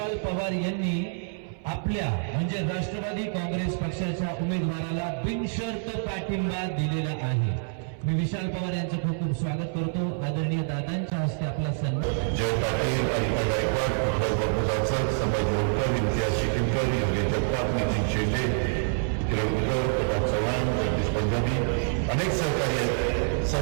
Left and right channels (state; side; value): silent; left; 60 dB below the other